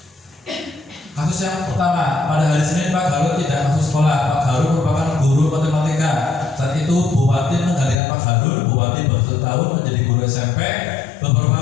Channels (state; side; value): drops out; right; at 8.0 s